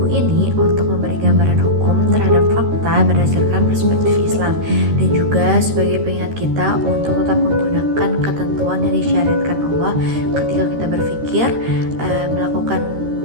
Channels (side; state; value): left; late; 13 ms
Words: ini untuk memberi gambaran hukum terhadap fakta berdasarkan perspektif Islam dan juga sebagai pengingat kita untuk tetap menggunakan ketentuan yang disyariatkan Allah ketika kita berpikir melakukan